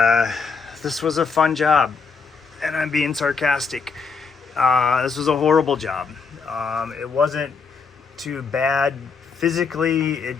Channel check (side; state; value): right; quieter; 5.1 dB